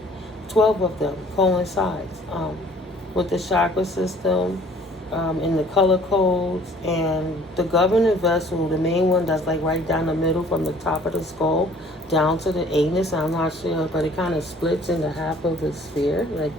12 of them coincides with the chakra system, in the color codes, and the governing vessel, the main one that's like right down the middle from the top of the skull down to the anus. I'm not sure, but it kind of splits into half of the sphere, like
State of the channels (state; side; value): normal; both; correlation 0.55